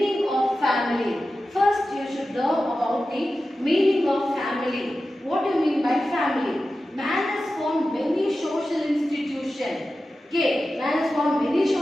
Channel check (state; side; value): normal; both; correlation 0.93